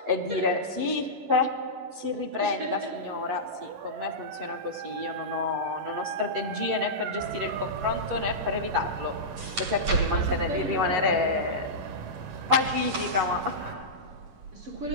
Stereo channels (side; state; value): left; late; 11 ms